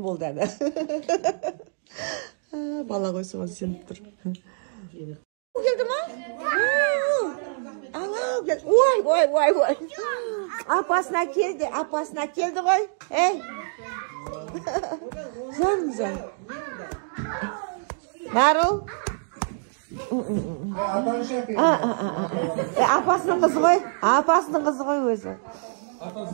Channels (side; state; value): left; silent; digital silence